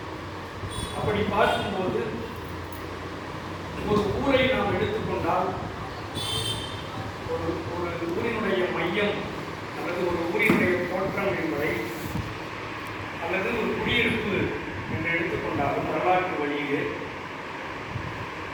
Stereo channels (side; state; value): both; identical; correlation 1.00